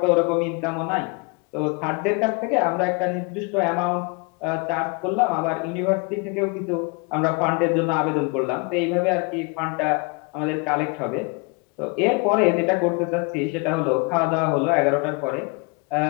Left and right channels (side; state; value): right; quieter; 30.8 dB